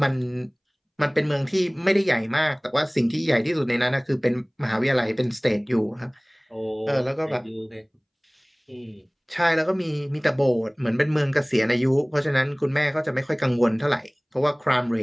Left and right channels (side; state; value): both; identical; correlation 1.00